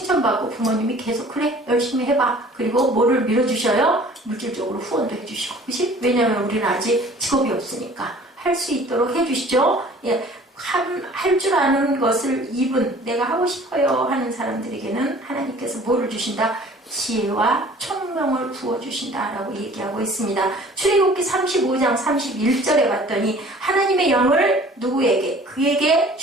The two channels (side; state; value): both; normal; correlation 0.49